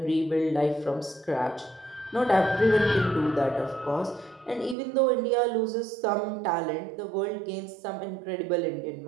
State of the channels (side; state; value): left; drops out; at 4.8 s